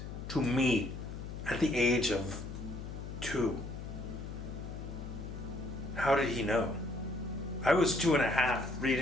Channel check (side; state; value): left; noise; hum, 8 dB below the sound